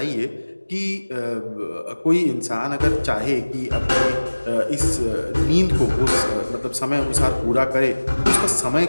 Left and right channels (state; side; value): inverted; both; correlation -1.00